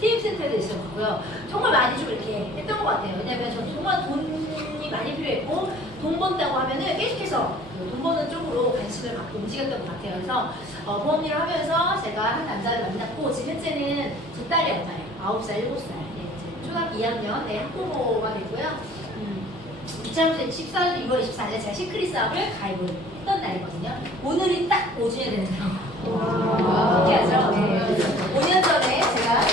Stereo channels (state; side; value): normal; both; correlation 0.51